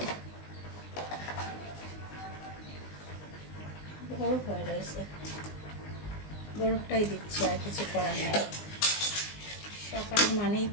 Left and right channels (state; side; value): late; right; 19 ms